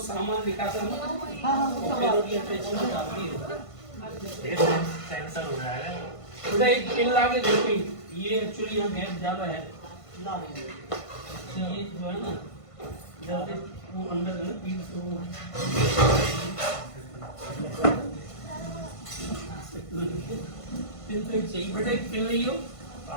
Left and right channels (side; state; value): right; late; 1.5 ms